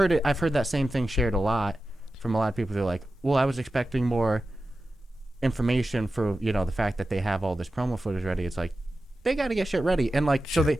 that same thing shared a lot from a lot of people. They're like, well, I was expecting more information for, you know, the fact that they have all this promo footage ready. It's like they got to get shit ready, and like, so they.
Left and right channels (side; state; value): both; normal; correlation 0.93